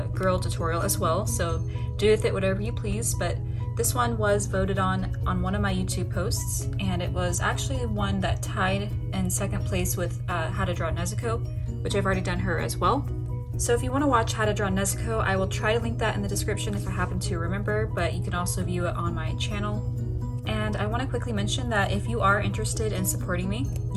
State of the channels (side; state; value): both; identical; correlation 1.00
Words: girl tutorial as well, so do with it whatever you please, but this one was voted on one of my YouTube posts, and it was actually one that tied in second place with how to draw Nezuko, which I've already done her as well. So if you want to watch how to draw Nezuko, I will try to link that in the description if I happen to remember, but you can also view it on my channel. And I want to quickly mention that if you are interested in supporting me,